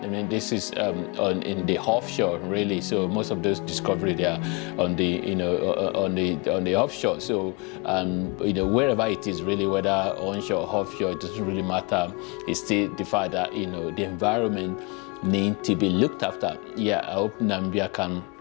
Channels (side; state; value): right; quieter; 29.8 dB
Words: I mean, this is in the offshore really. So most of those discoveries, they are on the on the offshore. So wherever it is really, whether onshore or offshore, it doesn't really matter. It's still the fact that the environment need to be looked after. I hope Namibia can